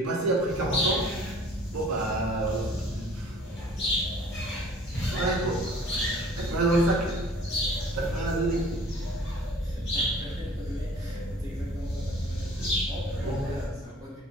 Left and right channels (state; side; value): normal; both; correlation 0.51